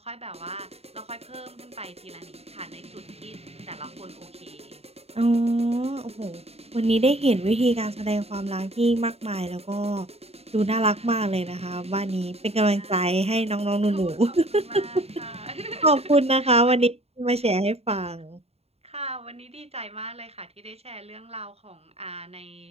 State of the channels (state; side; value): late; left; 0.30 ms